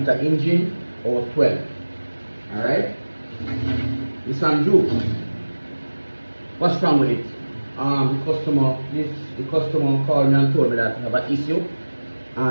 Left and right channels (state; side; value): inverted; both; correlation -1.00